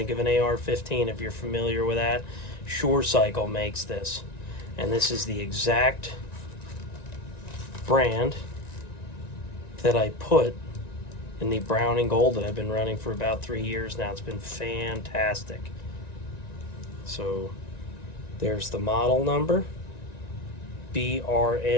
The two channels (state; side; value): late; right; 1.9 ms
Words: of an AR-15 if you're familiar with that. Sure Cycle makes this, and this is the exact brand that I put in the Browning Gold that I've been running for about 3 years now. It's been fantastic. So there's the model number,